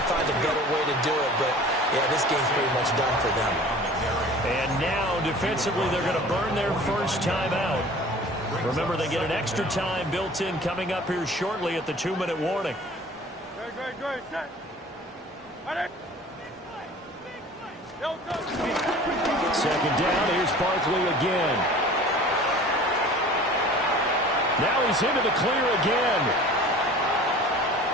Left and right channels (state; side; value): normal; both; correlation 0.44